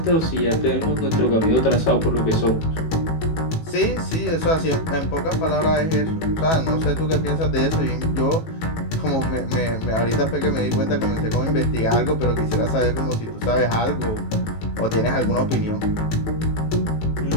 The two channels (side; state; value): right; late; 18 ms